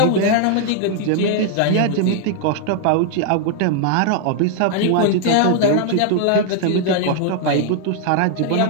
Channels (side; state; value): both; different; correlation -0.01